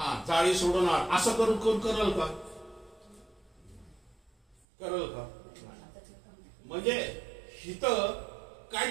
जाळी सोडून असं करून कोण करल का? करल का? म्हणजे इथं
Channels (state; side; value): drops out; left; at 4.7 s